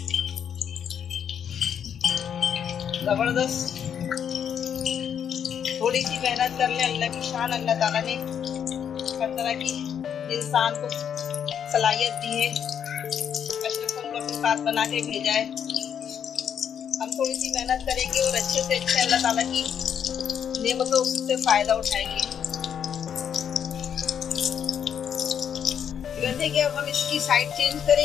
जबरदस्त। थोड़ी सी मेहनत कर ले, अल्लाह की शान। अल्लाह ताला ने हर तरह की इंसान को सलाहियत दी है, अशरफुल मखलूकात बना के भेजा है। हम थोड़ी सी मेहनत करेंगे और अच्छे से अच्छे अल्लाह ताला की नेमतों से फायदा उठाएंगे। गंदे के अब हम इसकी साइड चेंज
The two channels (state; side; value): quieter; right; 8.4 dB